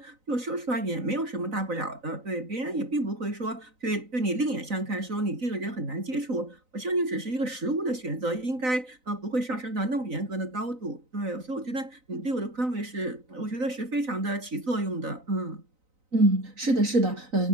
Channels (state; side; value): late; left; 3.9 ms